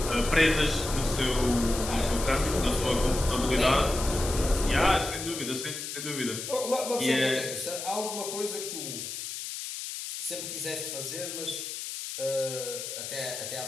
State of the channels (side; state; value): left; noise; hiss, 7 dB below the sound